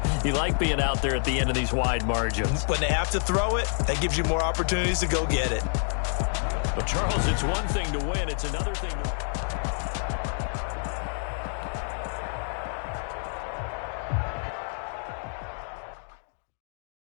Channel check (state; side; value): silent; right; 59 dB below the other